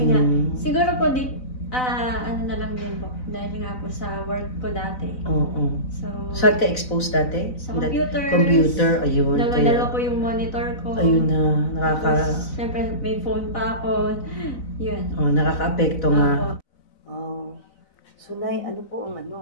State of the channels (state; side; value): late; right; 4.0 ms